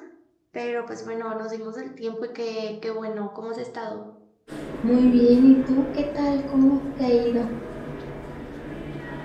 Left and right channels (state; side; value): identical; both; correlation 1.00